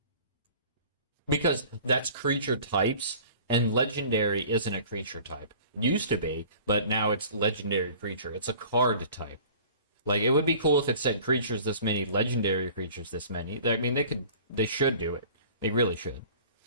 Because that's creature types, and legendary isn't a creature type. Used to be, but now it's legendary creature. It's a card type. Like, it would be cool if it said creatures this many, legendary creatures this many. I mean, they should do it. They really should.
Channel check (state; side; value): inverted; both; correlation -0.46